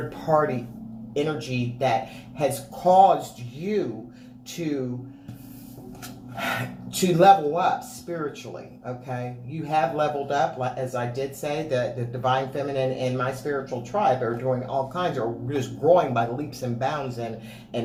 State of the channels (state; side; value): identical; both; correlation 1.00